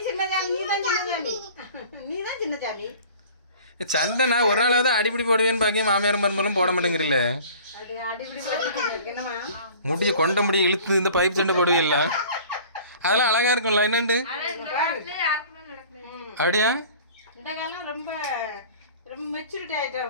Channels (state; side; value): inverted; both; correlation -0.46